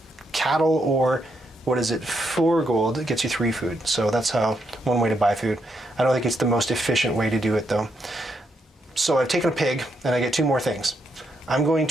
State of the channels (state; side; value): normal; both; correlation 0.79